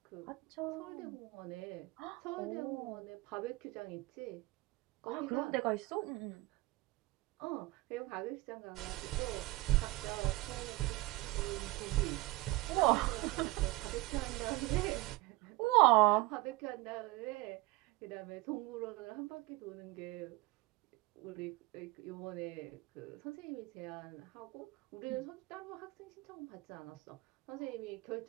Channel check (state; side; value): quieter; left; 20.2 dB